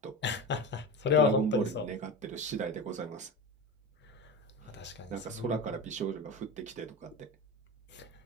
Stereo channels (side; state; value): both; normal; correlation 0.24